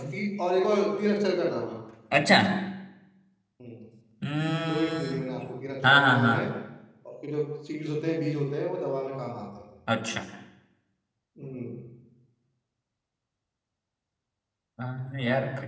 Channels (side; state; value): both; identical; correlation 1.00